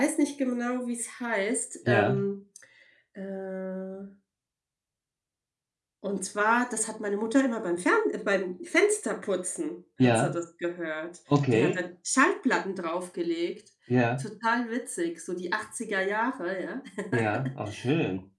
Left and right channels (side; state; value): both; identical; correlation 1.00